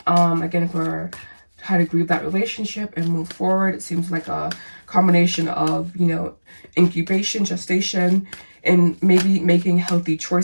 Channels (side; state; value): both; inverted; correlation -1.00